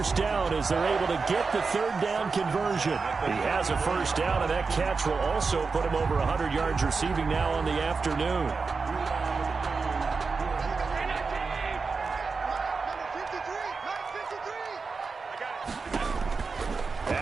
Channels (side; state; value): left; quieter; 4.6 dB